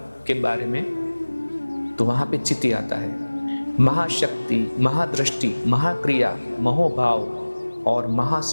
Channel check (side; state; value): both; inverted; correlation -1.00